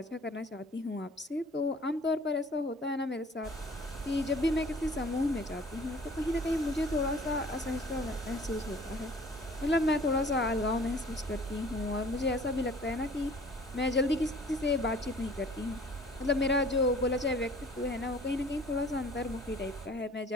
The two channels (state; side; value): normal; both; correlation 0.51